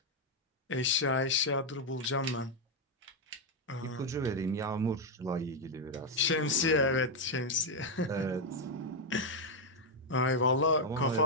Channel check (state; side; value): normal; both; correlation 0.02